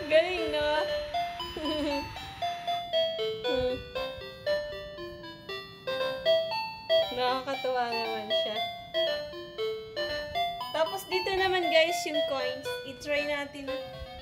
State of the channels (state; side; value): identical; both; correlation 1.00